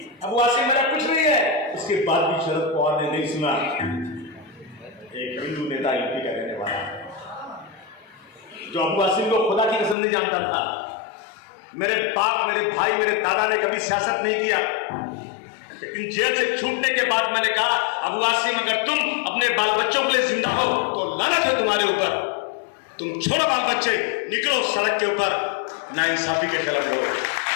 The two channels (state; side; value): drops out; right; at 10.0 s